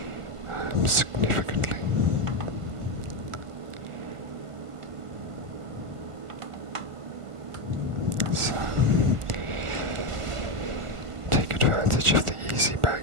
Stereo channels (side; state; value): left; late; 1.4 ms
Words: significantly. So, take advantage of the easy